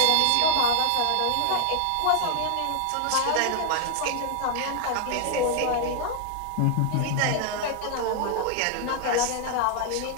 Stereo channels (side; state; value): both; different; correlation 0.00